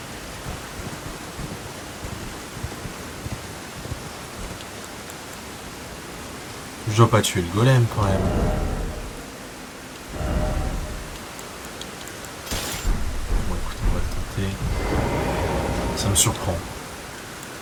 Je dois pas tuer le golem quand même. Bon écoute, on va le tenter. Ça me surprend.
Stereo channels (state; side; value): identical; both; correlation 1.00